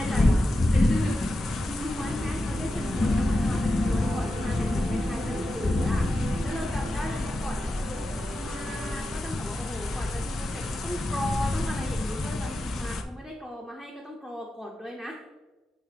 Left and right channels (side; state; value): both; normal; correlation 0.90